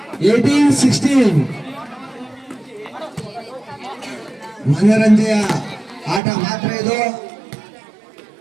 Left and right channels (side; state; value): left; drops out; at 6.2 s